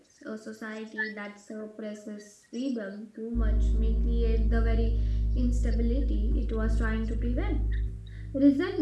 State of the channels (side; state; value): both; identical; correlation 1.00